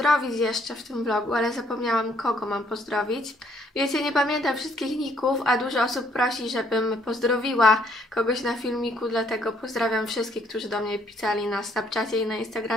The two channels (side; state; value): both; normal; correlation 0.66